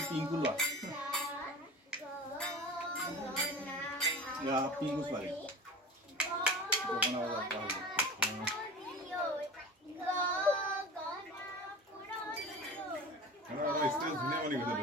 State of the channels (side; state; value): both; normal; correlation 0.35